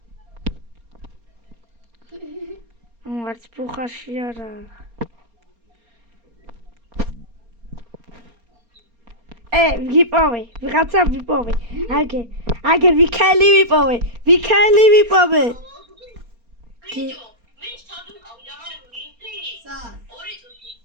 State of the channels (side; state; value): left; late; 4.3 ms